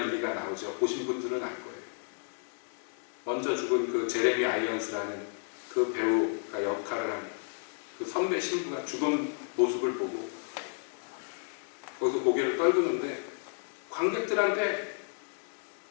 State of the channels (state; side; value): silent; right; 56 dB below the other